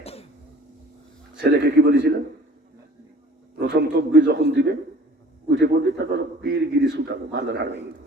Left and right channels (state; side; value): normal; both; correlation 0.49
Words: ছেলেকে কি বলেছিলেন? প্রথম তকবীর যখন দিবে উঠে পড়বে, তারপর পীরগিরি ছুটাবো, মাজার হার ভেঙে